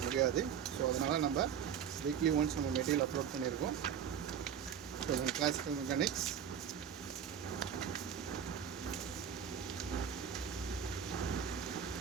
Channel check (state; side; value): quieter; left; 8.2 dB